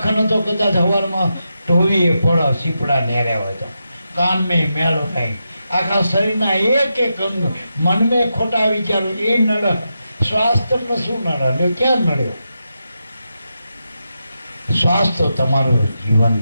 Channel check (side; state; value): both; inverted; correlation -0.87